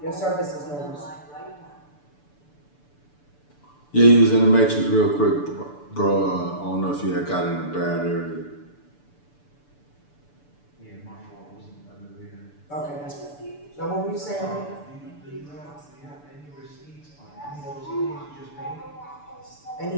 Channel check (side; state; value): right; late; 6.9 ms